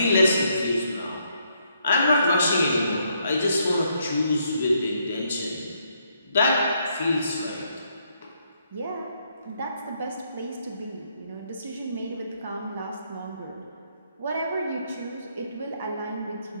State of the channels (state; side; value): inverted; both; correlation -0.74